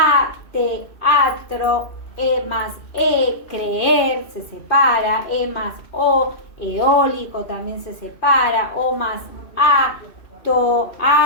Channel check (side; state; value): right; late; 2.7 ms